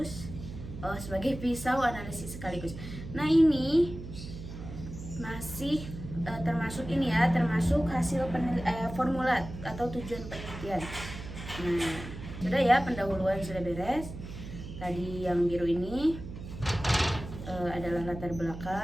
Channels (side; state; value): right; noise; hum, 11 dB below the sound